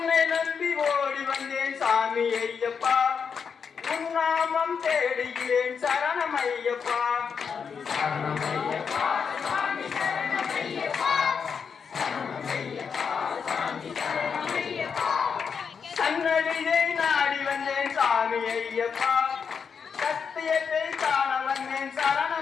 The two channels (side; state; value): right; quieter; 6.3 dB